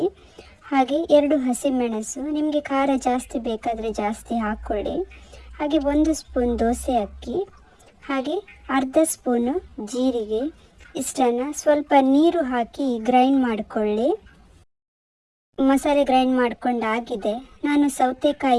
ಹಾಗೆ 2 ಹಸಿಮೆಣಸು, ನಿಮಗೆ ಖಾರ ಜಾಸ್ತಿ ಬೇಕಾದರೆ ಜಾಸ್ತಿ ಹಾಕ್ಕೊಳ್ಳಿ. ಹಾಗೆ 1 ಸ್ಪೂನ್ ದೋಸೆ ಅಕ್ಕಿ, ಹಾಗೆ ಅರ್ಧ ಸ್ಪೂನು ಜೀರಿಗೆ. ಇಷ್ಟನ್ನು ಸ್ವಲ್ಪ ನೀರು ಹಾಕಿ ಗ್ರೈಂಡ್ ಮಾಡಿಕೊಳ್ಳಿ. ಮಸಾಲೆ ಗ್ರೈಂಡ್ ಮಾಡ್ಕೊಂಡಾಗಿದೆ. ನಾನು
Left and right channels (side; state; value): both; identical; correlation 1.00